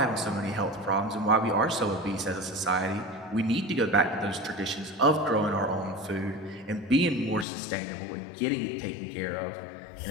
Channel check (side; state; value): right; drops out; at 7.5 s